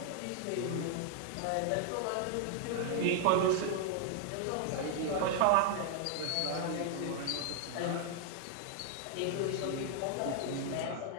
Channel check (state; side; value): different; both; correlation 0.00